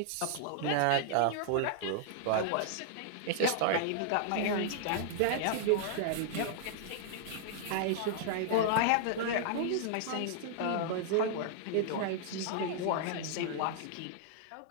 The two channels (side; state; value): both; different; correlation -0.01